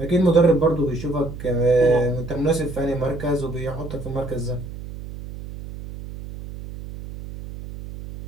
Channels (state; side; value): noise; right; hum, 11 dB below the sound